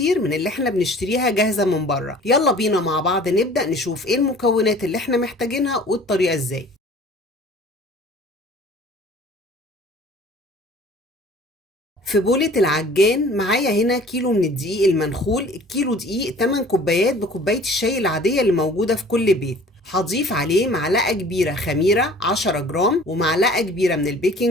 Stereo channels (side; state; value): both; normal; correlation 0.48